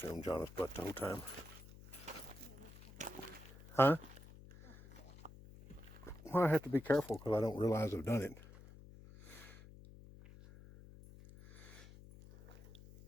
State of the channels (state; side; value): noise; left; hum, 18 dB below the sound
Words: film Jonna's butt the whole time. Huh? Well, I have to be careful because I don't realize I've done it.